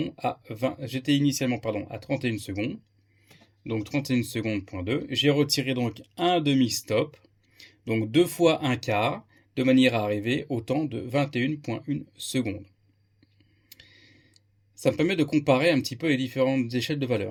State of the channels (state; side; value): identical; both; correlation 1.00